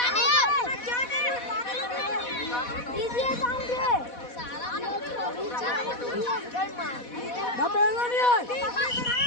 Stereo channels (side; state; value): right; late; 4.1 ms